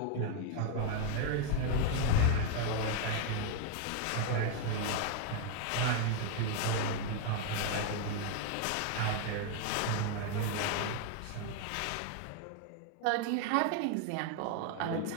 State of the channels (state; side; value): different; both; correlation 0.01